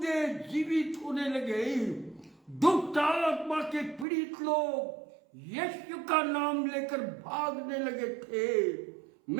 जीवित होने लगे। दुष्ट आत्मा के पीड़ित लोग यीशु का नाम लेकर भागने लगे थे।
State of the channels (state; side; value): drops out; left; at 4.0 s